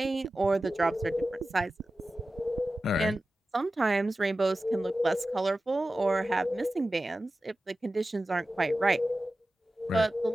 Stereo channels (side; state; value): both; normal; correlation 0.94